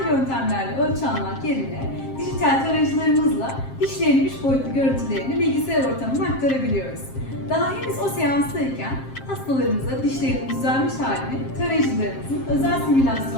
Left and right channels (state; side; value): late; right; 7.5 ms